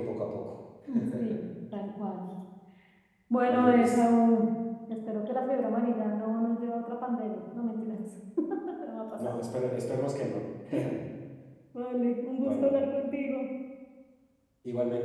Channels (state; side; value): identical; both; correlation 1.00